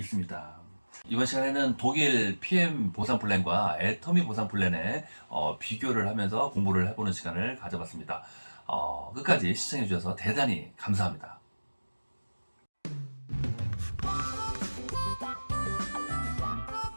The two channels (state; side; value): inverted; both; correlation -1.00